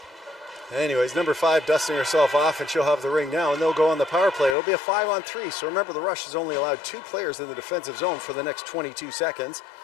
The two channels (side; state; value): right; drops out; at 4.5 s